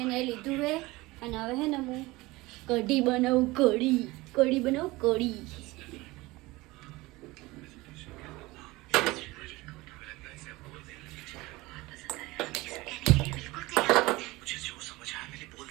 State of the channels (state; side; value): quieter; left; 21.0 dB